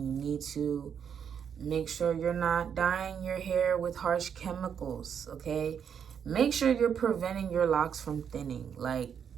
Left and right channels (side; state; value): left; quieter; 7.7 dB